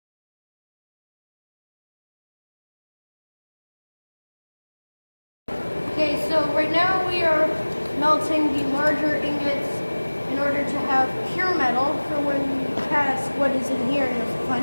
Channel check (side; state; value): both; inverted; correlation -1.00